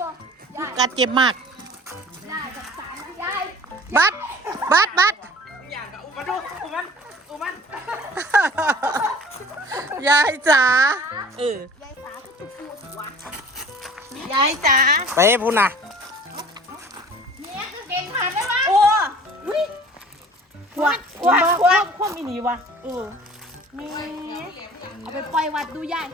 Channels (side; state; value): both; normal; correlation 0.46